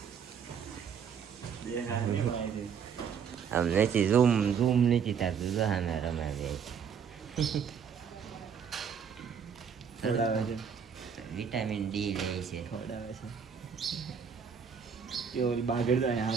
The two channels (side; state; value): left; quieter; 7.0 dB